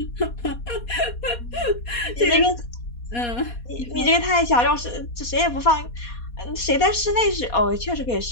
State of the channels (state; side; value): late; right; 4.2 ms